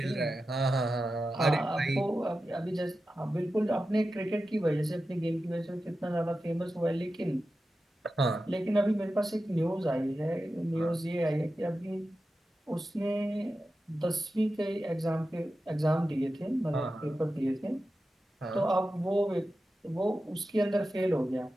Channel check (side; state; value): both; normal; correlation 0.92